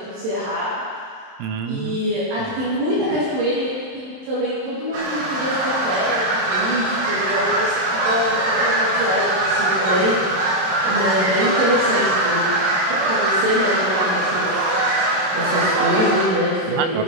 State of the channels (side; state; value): left; late; 27 ms